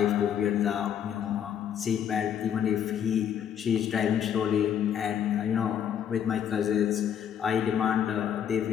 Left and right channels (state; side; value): quieter; right; 9.0 dB